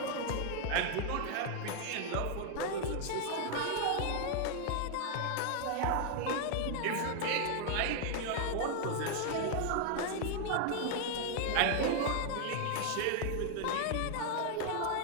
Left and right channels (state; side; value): different; both; correlation 0.00